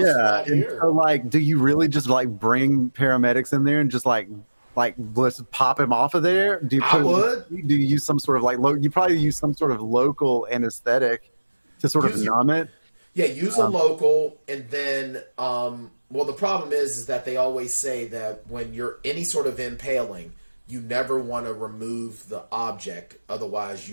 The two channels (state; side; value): inverted; both; correlation -1.00